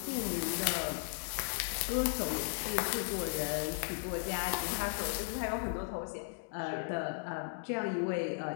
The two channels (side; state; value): right; silent; digital silence